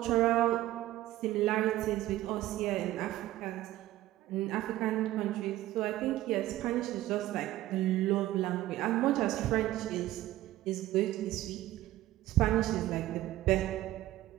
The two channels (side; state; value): left; quieter; 15.2 dB